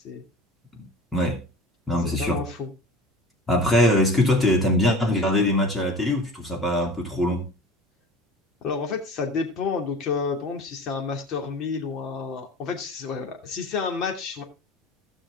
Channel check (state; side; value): normal; both; correlation 0.38